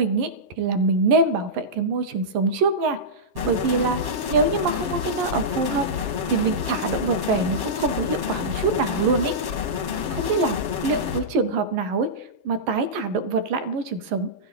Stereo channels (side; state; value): left; late; 7.6 ms